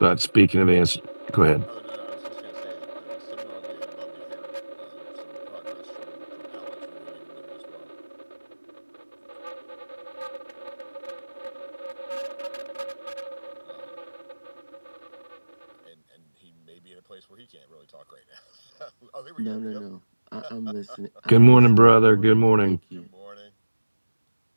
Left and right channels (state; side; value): inverted; both; correlation -1.00